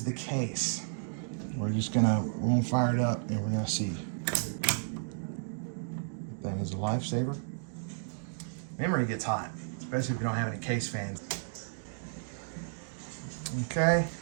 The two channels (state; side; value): silent; left; digital silence